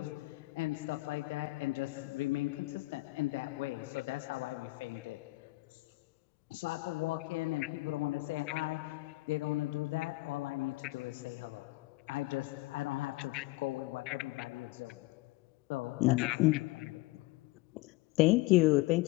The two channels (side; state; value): right; quieter; 21.1 dB